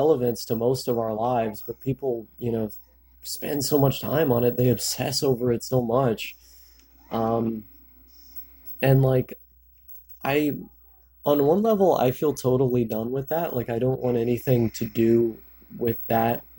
to most of our lives, but people, spend so much time on it. They obsess over it so much. Um, and like, I on one level, I feel totally done with that. Like, I don't want anything to do with that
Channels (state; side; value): identical; both; correlation 1.00